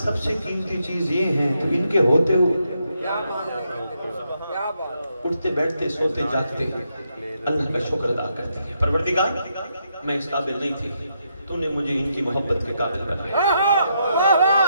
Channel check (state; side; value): inverted; both; correlation -0.79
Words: سب سے قیمتی چیز یہ ہے تو ان کے ہوتے ہوئے اٹھتے بیٹھتے سوتے جاگتے اللہ کا شکر ادا کرتی ہے۔ پروردگار میں اس قابل نہیں تھی، تو نے مجھے ان کی محبت کے قابل بنایا۔